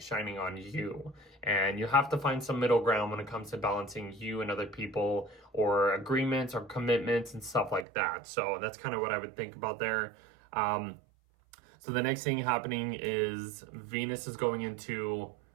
on you. And you have to find some middle ground when it comes to balancing you and other people, or agreements or commitments and stuff like that. So that's kind of what I would think about there. So the next thing happening is Venus is going into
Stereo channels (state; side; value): drops out; left; at 7.9 s